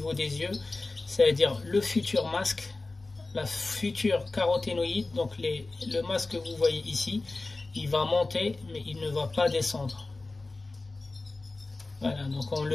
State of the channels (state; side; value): quieter; right; 3.3 dB